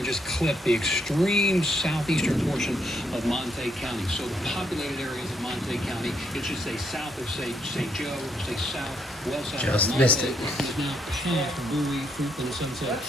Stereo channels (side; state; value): both; normal; correlation 0.74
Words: just clip the extreme southeastern portion of Monte County. So the populated areas of Monte County, it should say south of St. Joe, say south, well south just of missed Monte. it. It is now past Bowie, Fruitland, and Sunset.